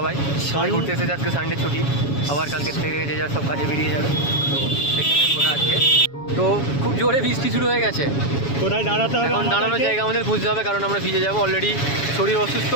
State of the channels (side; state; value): right; late; 7.2 ms